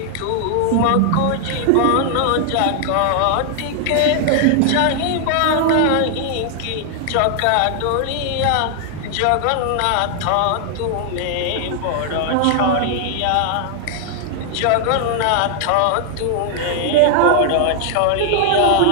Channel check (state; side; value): different; both; correlation 0.00